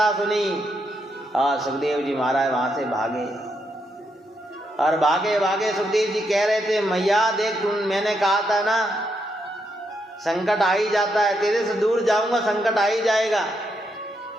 सुनी? सुखदेव जी महाराज वहां से भागे और भागे भागे सुखदेव जी कह रहे थे, मैया देख मैंने कहा था ना संकट आ ही जाता है, तेरे से दूर जाऊंगा संकट आ ही जाएगा,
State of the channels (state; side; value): normal; both; correlation 0.80